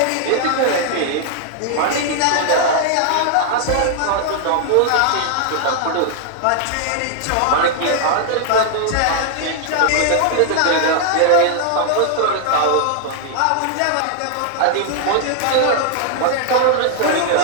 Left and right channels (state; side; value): different; both; correlation 0.00